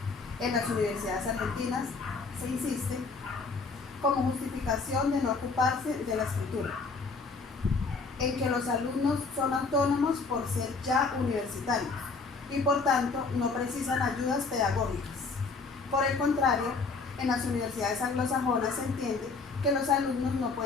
en las universidades argentinas se insiste como justificación de no ocuparse de la escritura, en que los alumnos son autónomos por ser ya universitarios y por tanto no precisan ayudas pedagógicas. Por el contrario, en las universidades anglosajonas se entiende que los alumnos no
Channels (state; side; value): quieter; right; 4.3 dB